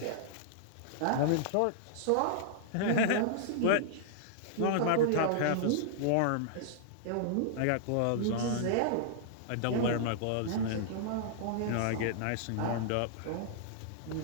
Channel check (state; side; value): different; both; correlation -0.02